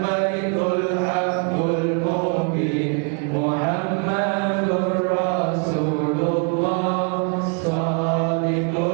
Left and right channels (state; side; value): quieter; left; 38.0 dB